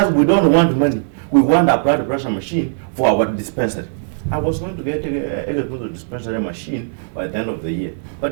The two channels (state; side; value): silent; left; digital silence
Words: we don't want money, we want a blood pressure machine for our dispensary. I was going to get a dispensary machine by the end of the year.